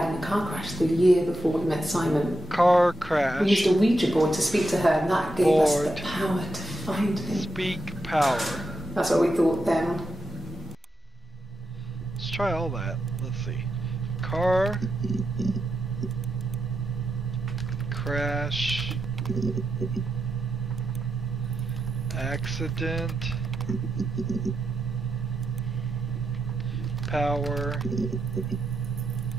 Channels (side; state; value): both; normal; correlation 0.85